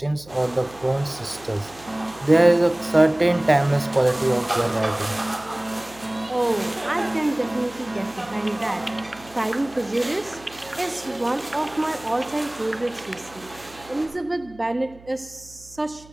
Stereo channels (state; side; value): noise; right; hum, 23 dB below the sound